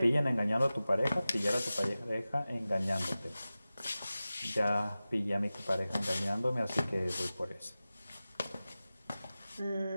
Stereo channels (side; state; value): both; inverted; correlation -0.96